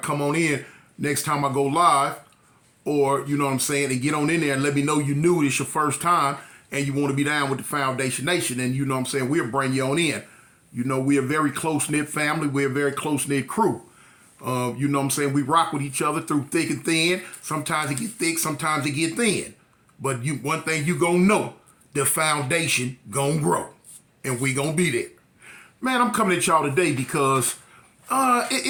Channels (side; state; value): both; identical; correlation 1.00